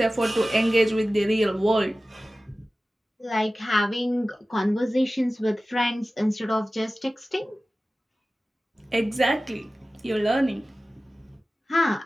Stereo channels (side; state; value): both; normal; correlation 0.96